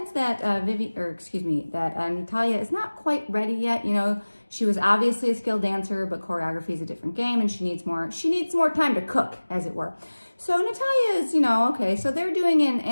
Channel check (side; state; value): both; inverted; correlation -1.00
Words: that Natalia is not quite ready yet. You know, she was obviously a skilled dancer, but choreography is a different game, and she needs more time to cook, as it were. So Natalia is, you know, okay, so they're doing an